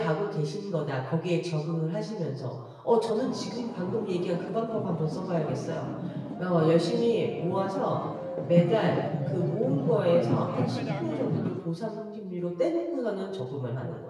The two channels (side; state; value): both; identical; correlation 1.00